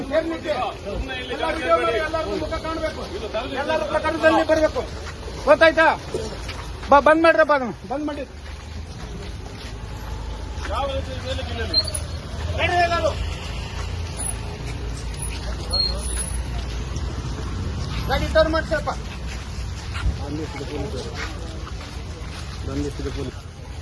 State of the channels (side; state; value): both; identical; correlation 1.00